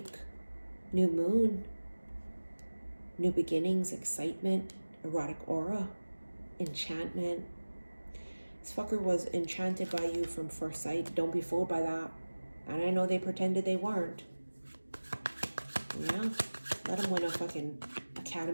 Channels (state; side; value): inverted; both; correlation -1.00